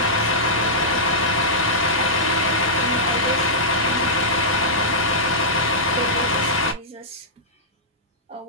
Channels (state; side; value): normal; both; correlation -0.12